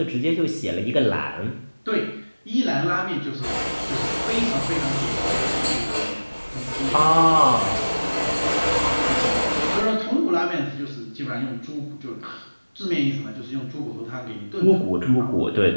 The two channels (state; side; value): inverted; both; correlation -1.00